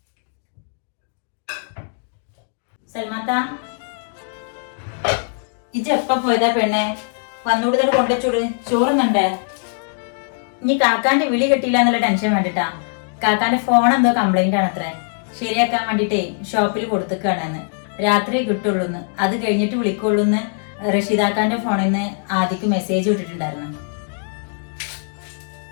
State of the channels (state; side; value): silent; right; digital silence